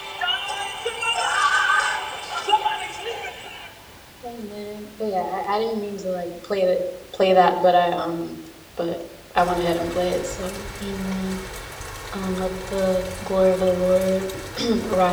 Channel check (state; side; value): identical; both; correlation 1.00